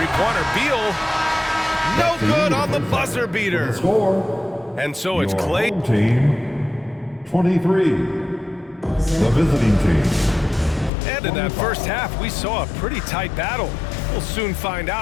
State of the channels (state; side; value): drops out; right; at 10.9 s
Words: Beal. No good on the buzzer beater. Score. And so it's Your Clay. home team, 23. The visiting team. And in that first half, we saw a pretty tight battle. We'll soon find